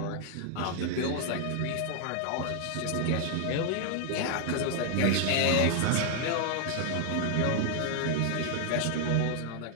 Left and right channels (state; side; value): different; both; correlation 0.00